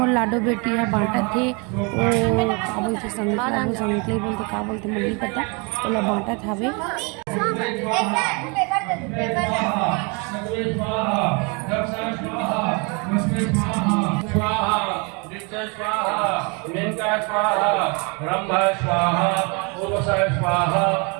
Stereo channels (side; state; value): left; quieter; 32.0 dB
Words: लाडो बेटी है बांटा थे वो का बोलते संगले बोलते का बोलते मुझे नहीं पता ओला बांटा थावे।